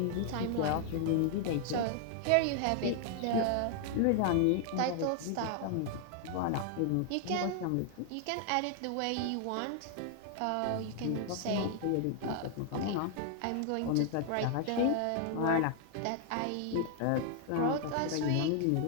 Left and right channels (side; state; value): both; different; correlation 0.00